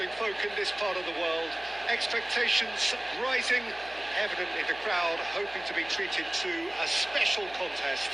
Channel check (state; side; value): noise; left; hum, 25 dB below the sound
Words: folk in this part of the world. Expectations rising, evidently the crowd hoping to be treated to a special contest.